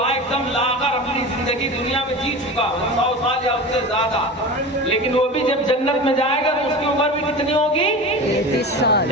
ایک دم لاغر اپنی زندگی دنیا میں جی چکا 100 سال یا اس سے زیادہ، لیکن وہ بھی جب جنت میں جائے گا تو اس کی عمر بھی کتنی ہوگی؟ 33 سال.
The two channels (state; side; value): normal; both; correlation 0.31